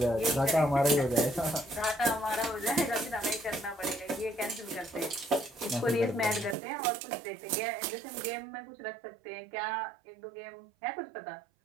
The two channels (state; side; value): drops out; left; at 6.6 s